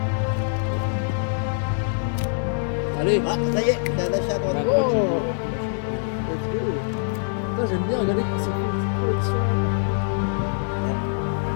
Allez. Ah, ça y est, t'as lâché à droite. Oh let's go. Putain j'aime bien regarder quand c'est une petite collection.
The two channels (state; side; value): silent; right; 63 dB below the other